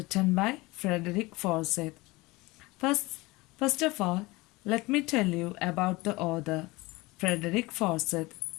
by Frederick Forsyth. First, first of all, let me tell you about the author, Frederick Forsyth.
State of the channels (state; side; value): quieter; right; 22.2 dB